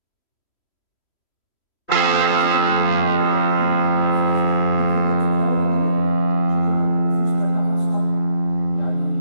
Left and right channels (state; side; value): late; right; 3.1 ms